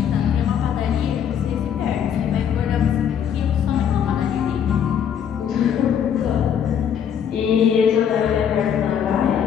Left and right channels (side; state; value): right; quieter; 8.5 dB